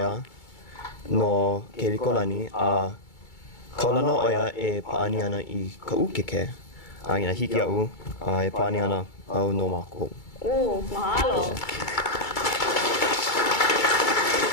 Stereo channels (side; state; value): right; late; 2.3 ms